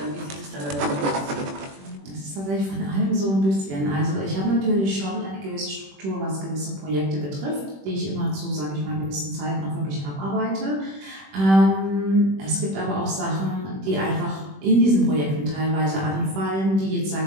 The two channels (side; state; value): left; late; 21 ms